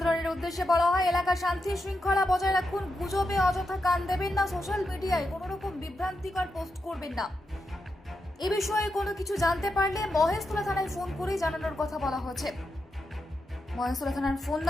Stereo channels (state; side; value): normal; both; correlation 0.86